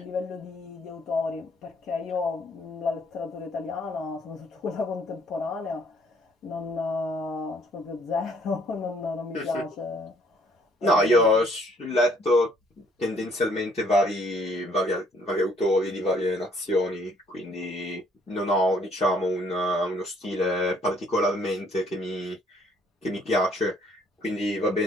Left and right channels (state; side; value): normal; both; correlation 0.64